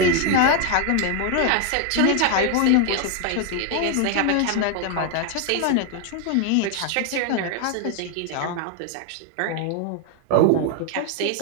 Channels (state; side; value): different; both; correlation 0.01